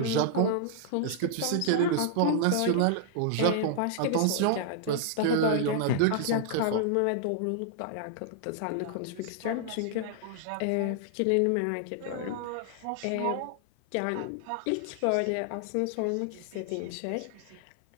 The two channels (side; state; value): both; different; correlation -0.01